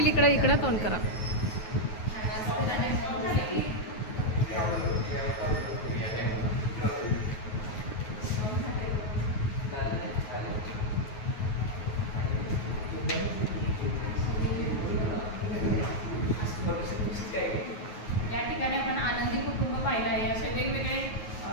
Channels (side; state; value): right; late; 9.3 ms